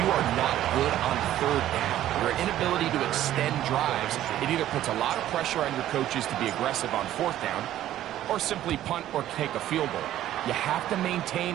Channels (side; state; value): left; quieter; 12.8 dB